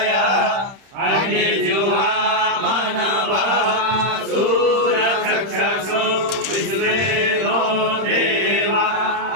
अग्निजुहा मनवा सूरचक्षुषु विश्वेनो देवा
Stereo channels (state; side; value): late; left; 31 ms